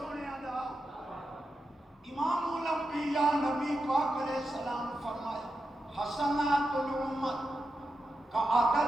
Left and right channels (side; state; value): both; normal; correlation 0.88